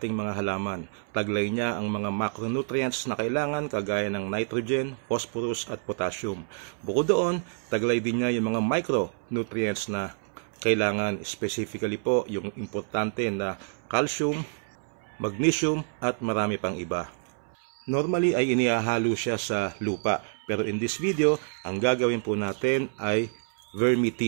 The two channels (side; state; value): left; silent; 59 dB below the other